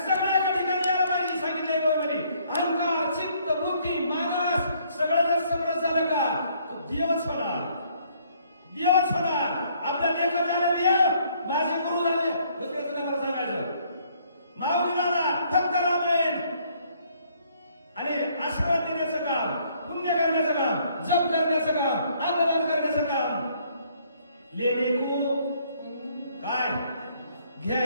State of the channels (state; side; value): inverted; both; correlation -0.65